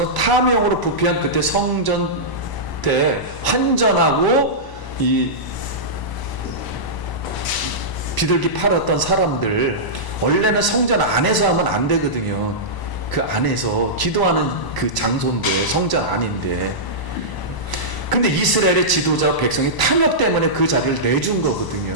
탐욕으로 부패한 그때 성전 때 환전하고 이 비둘기 팔았던 사람들, 원래는 성전 안에서 하면 안 되거든요. 그 안에서 기도하는 그 장소인데, 성전 안인데. 근데 이스라엘의 지도자 백성이 탐욕 때문에 그 자리를 내준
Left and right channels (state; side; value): late; right; 1.0 ms